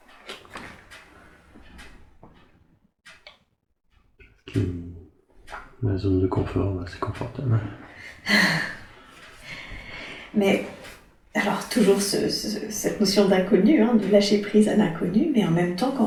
La zone de confort, c'est confortable. Mais alors toujours cette notion d'inconnu, hein, de lâcher prise à l'inconnu, mais en même temps quand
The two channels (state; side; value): identical; both; correlation 1.00